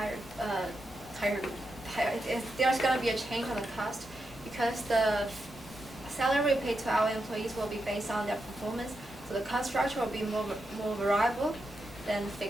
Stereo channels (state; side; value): normal; both; correlation 0.86